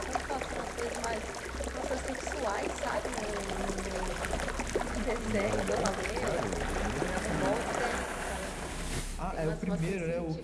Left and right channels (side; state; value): both; identical; correlation 1.00